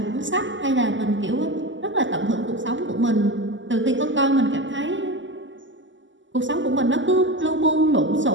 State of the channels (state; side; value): late; left; 0.55 ms